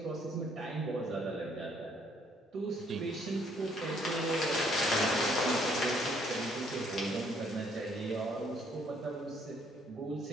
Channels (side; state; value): both; normal; correlation 0.65